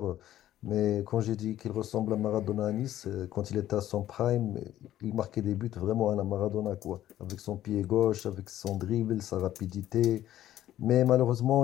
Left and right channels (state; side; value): quieter; right; 12.9 dB